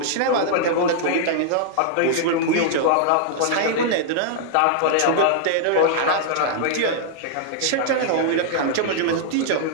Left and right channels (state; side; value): different; both; correlation -0.01